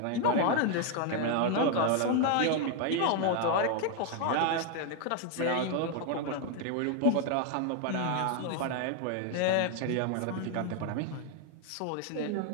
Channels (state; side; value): different; both; correlation 0.00